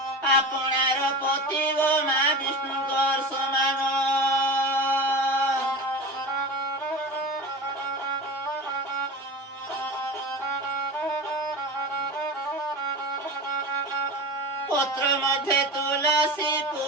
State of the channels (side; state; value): both; normal; correlation 0.29